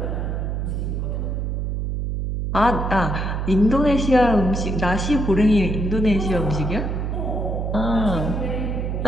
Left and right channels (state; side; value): noise; right; hum, 1 dB below the sound